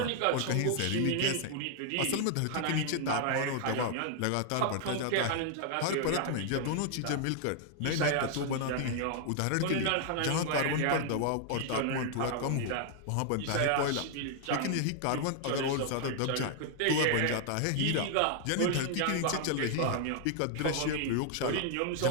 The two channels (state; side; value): different; both; correlation 0.00